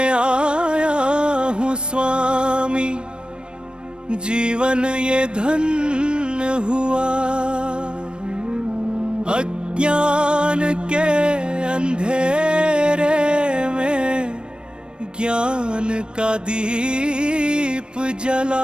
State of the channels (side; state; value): left; late; 0.054 ms